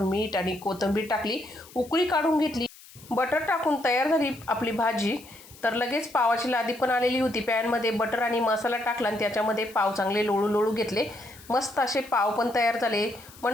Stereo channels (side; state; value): left; noise; hiss, 21 dB below the sound